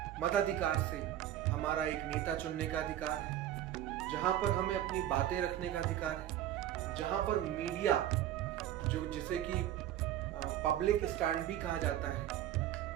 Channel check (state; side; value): quieter; left; 12.3 dB